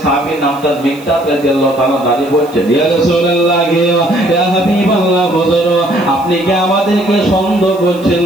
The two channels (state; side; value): noise; right; hiss, 24 dB below the sound